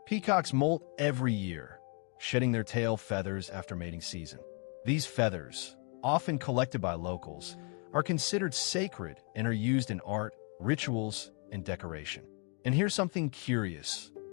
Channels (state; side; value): quieter; right; 37.2 dB